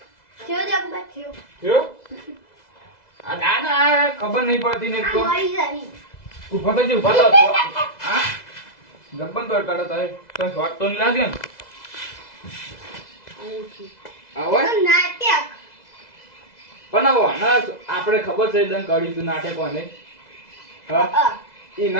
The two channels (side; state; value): right; late; 2.0 ms